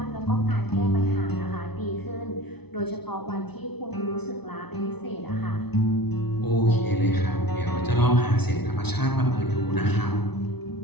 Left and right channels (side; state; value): right; late; 0.99 ms